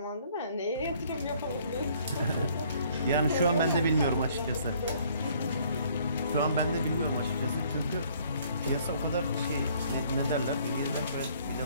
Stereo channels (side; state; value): both; inverted; correlation -0.61